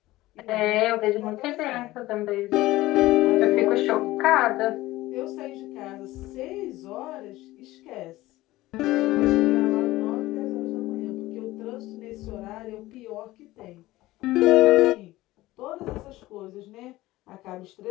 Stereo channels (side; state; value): right; quieter; 17.7 dB